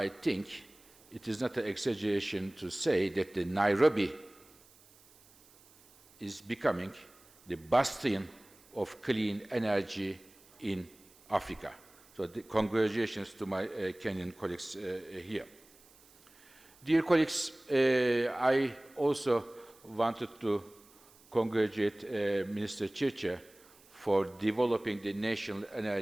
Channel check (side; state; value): right; noise; hiss, 27 dB below the sound